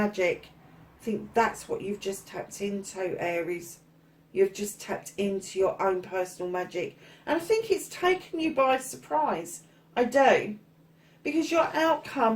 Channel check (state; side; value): identical; both; correlation 1.00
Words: I think that's what you've just tapped into, Aries. You've just tapped into your own personal magic. And I think it's taken you by surprise. I do. Because your